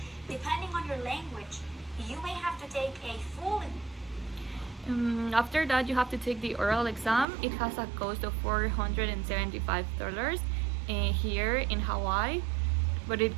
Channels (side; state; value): left; drops out; at 7.2 s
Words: Depending on your language, you may have to take a full. After that, you have to take the oral exam. It has a cost of $475 here in Hawaii, but it